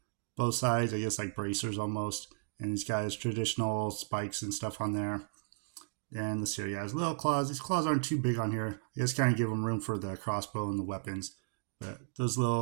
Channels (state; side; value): silent; left; digital silence